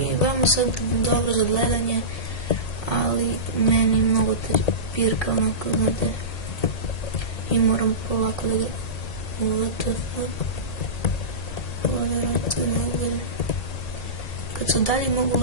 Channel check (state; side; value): late; right; 1.8 ms